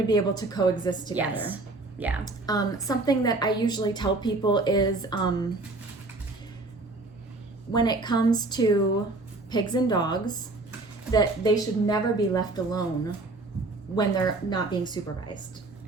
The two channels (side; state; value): left; quieter; 3.1 dB